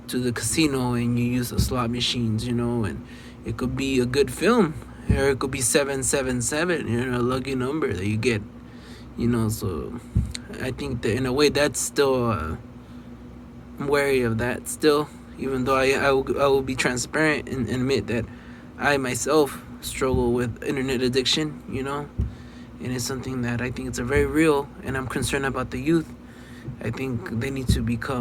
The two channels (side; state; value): both; identical; correlation 1.00